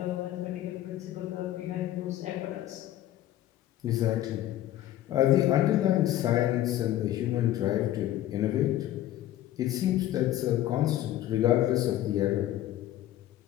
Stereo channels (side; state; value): right; quieter; 13.4 dB